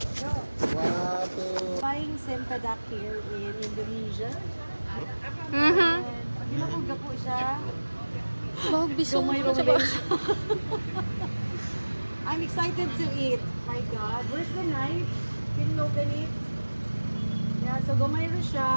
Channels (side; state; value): both; inverted; correlation -1.00